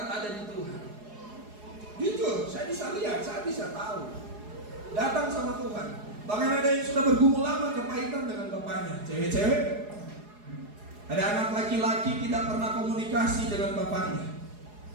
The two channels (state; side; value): late; left; 4.8 ms